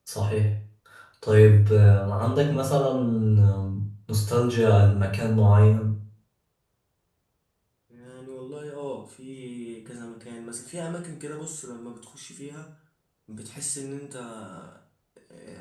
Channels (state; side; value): identical; both; correlation 1.00